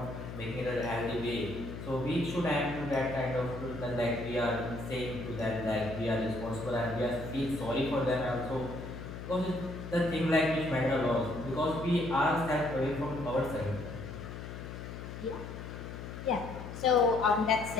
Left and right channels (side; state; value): left; noise; hum, 9 dB below the sound